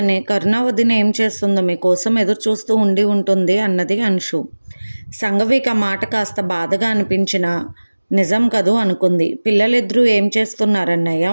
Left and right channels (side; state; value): both; inverted; correlation -1.00